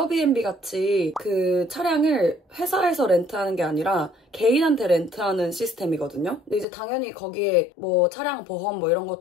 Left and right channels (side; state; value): right; drops out; at 6.7 s